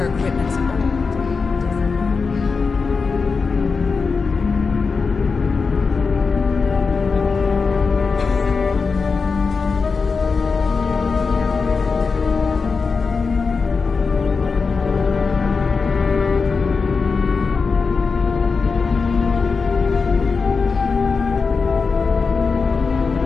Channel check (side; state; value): right; quieter; 4.8 dB